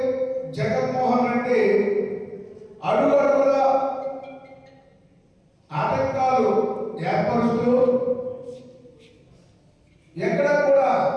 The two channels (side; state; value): both; identical; correlation 1.00